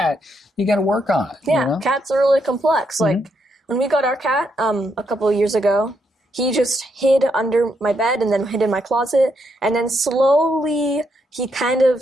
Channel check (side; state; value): both; normal; correlation 0.78